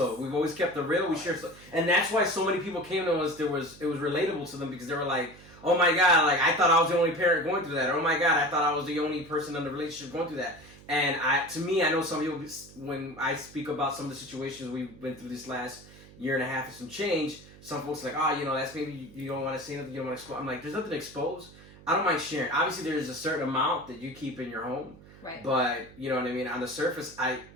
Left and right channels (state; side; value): noise; right; hum, 21 dB below the sound